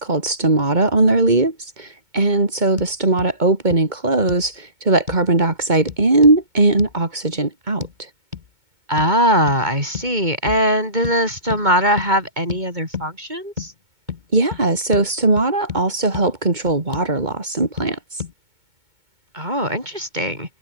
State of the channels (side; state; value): left; late; 2.2 ms